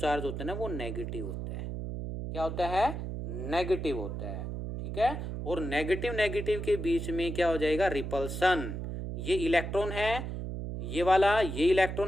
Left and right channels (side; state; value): right; noise; hum, 5 dB below the sound